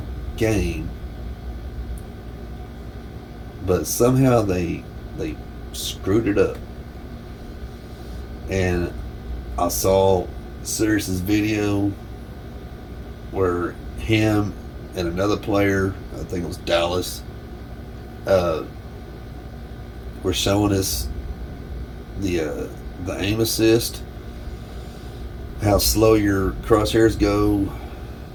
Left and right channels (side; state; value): both; identical; correlation 1.00